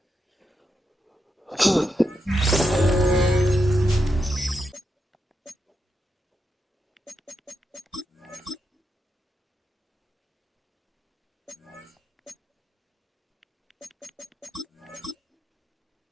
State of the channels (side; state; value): both; normal; correlation 0.85